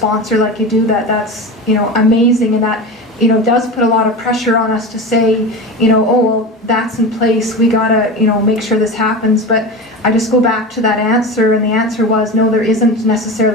like you do. That's amazing, and that does put a lot of pressure on us to say, oh well, that's in place, we gotta make sure this happens. But I just go back to that answer, and the answer was no, there isn't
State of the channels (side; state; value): both; normal; correlation 0.26